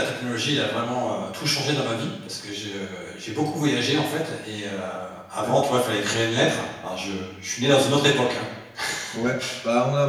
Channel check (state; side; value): identical; both; correlation 1.00